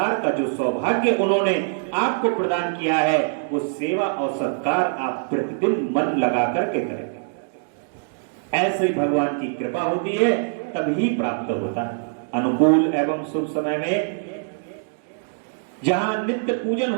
का जो सौभाग्य उन्होंने आपको प्रदान किया है, वो सेवा और सत्कार आप प्रतिदिन मन लगा करके करें। ऐसे ही भगवान की कृपा होती है, तभी प्राप्त होता है। अनुकूल एवं शुभ समय में जहां नित्य पूजन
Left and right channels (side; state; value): left; silent; digital silence